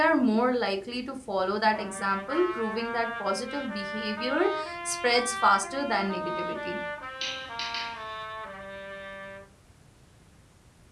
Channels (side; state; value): both; identical; correlation 1.00